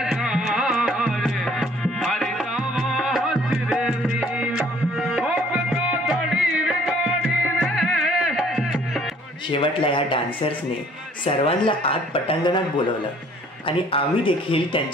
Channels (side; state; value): both; normal; correlation 0.58